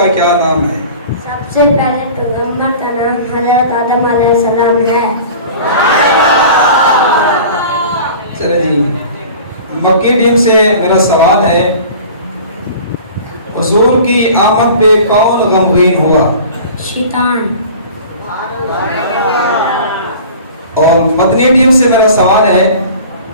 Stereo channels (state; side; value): inverted; both; correlation -0.42